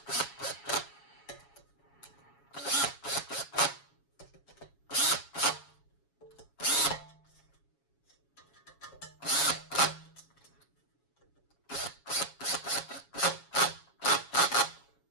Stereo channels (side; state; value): right; late; 7.2 ms